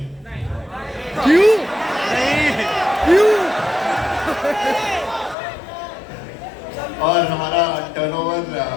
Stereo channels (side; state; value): right; drops out; at 5.4 s